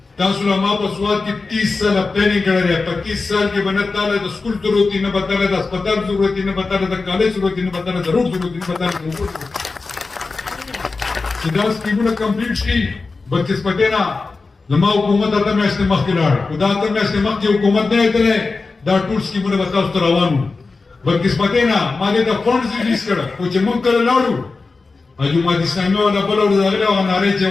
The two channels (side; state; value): right; quieter; 4.0 dB